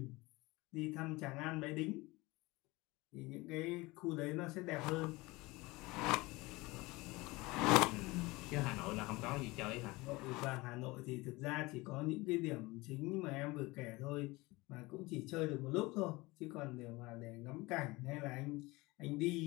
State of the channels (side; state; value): right; quieter; 22.3 dB